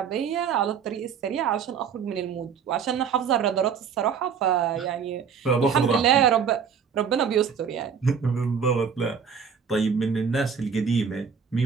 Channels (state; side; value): quieter; left; 6.7 dB